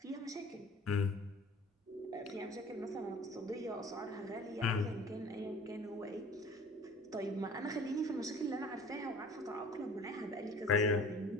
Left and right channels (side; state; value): both; normal; correlation 0.46